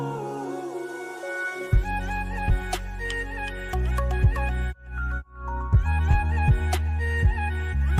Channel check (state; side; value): identical; both; correlation 1.00